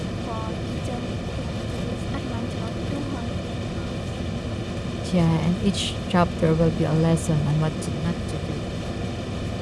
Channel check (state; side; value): identical; both; correlation 1.00